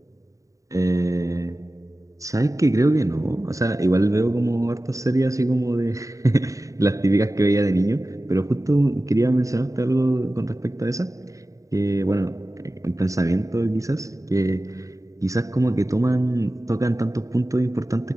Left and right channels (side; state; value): left; late; 0.16 ms